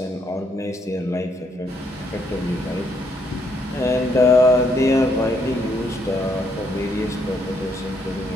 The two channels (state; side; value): normal; both; correlation 0.72